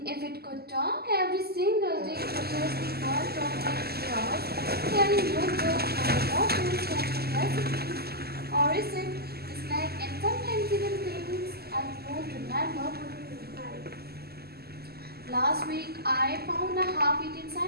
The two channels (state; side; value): late; left; 0.46 ms